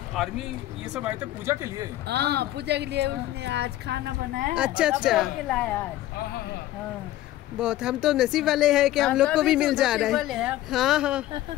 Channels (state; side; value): quieter; right; 14.6 dB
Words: आर्मी ये सब आए थे पूजा के लिए? हाँ पूजा के लिए उसने आज खाना बनाया। अच्छा अच्छा, लाया आज। हाँ बहुत, हम तो नसीब वाले हैं कि हम लोग को भी मिल जा रहा है। हाँ हाँ,